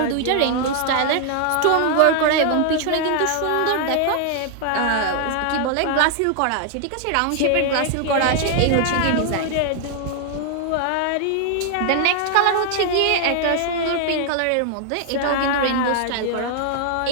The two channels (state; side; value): different; both; correlation 0.00